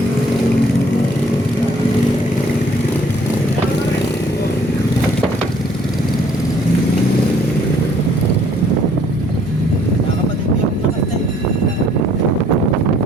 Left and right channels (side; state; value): both; normal; correlation 0.61